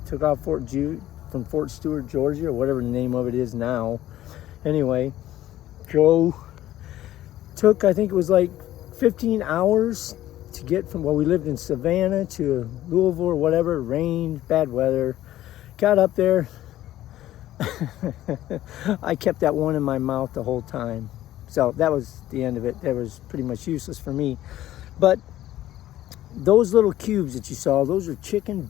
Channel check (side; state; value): right; quieter; 13.8 dB